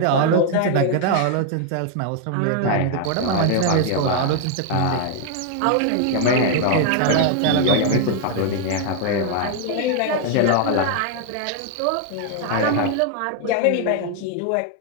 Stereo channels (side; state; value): both; different; correlation 0.00